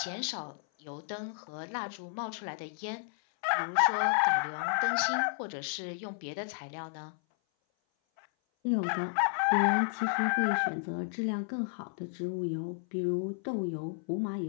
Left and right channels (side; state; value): right; silent; 56 dB below the other